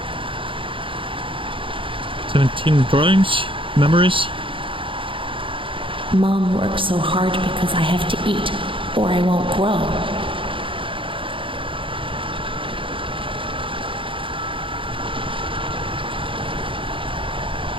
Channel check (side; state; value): left; late; 0.25 ms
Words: 17 drawings? Memories? Mom works so hard because I have to eat, or I won't grow.